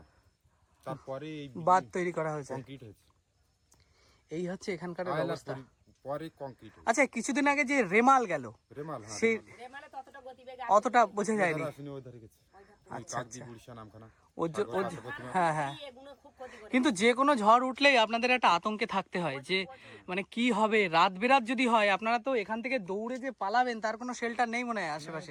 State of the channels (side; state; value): both; identical; correlation 1.00